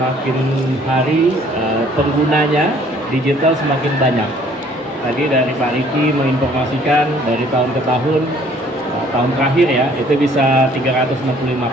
hari penggunanya digital semakin banyak. Tadi dari Pak Riki menginformasikan dari tahun ke tahun, tahun terakhir ya itu bisa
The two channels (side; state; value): both; normal; correlation 0.58